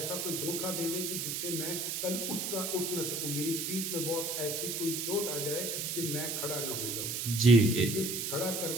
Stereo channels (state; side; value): noise; right; hiss, 2 dB below the sound